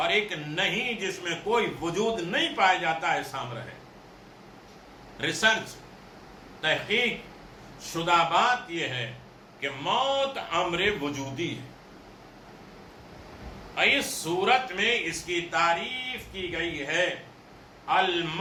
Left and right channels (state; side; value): identical; both; correlation 1.00